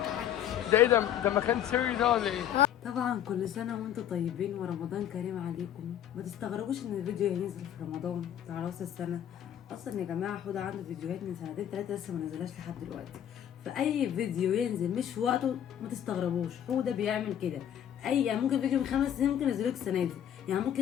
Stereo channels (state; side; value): quieter; right; 10.4 dB